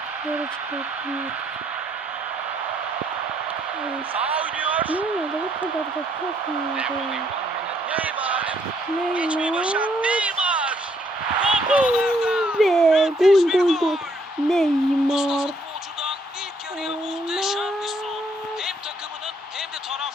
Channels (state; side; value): normal; both; correlation 0.69